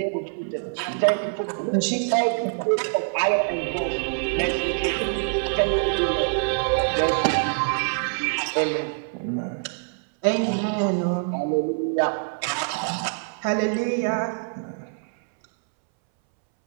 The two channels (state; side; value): silent; left; 62 dB below the other